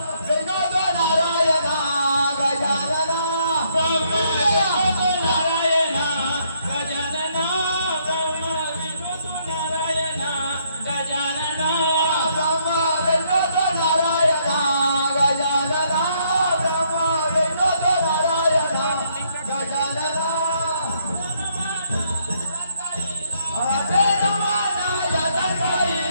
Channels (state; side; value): inverted; both; correlation -0.71